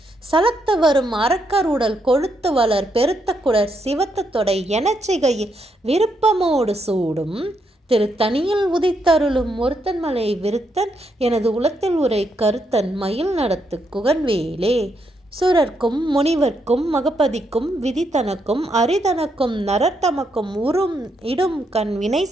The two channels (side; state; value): both; normal; correlation 0.78